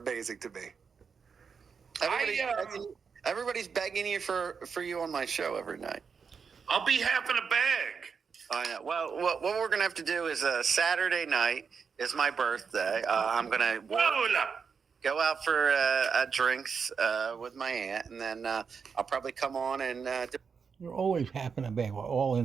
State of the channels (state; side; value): quieter; left; 6.0 dB